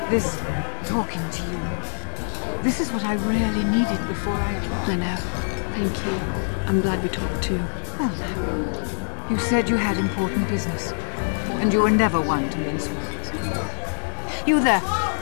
This talking to you. This is what I really needed before I know. Thank you. I'm glad we talked too. Well now, you said you had important business, and you were never one to mince words. You there.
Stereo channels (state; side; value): silent; right; digital silence